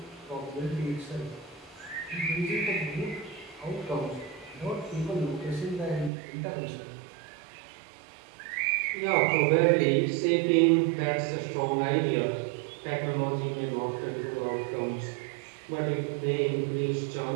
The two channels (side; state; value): left; drops out; at 6.1 s